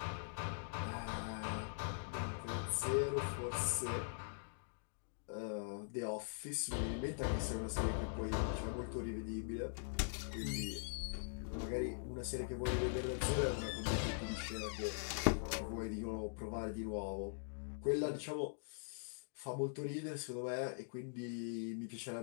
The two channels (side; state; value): right; silent; digital silence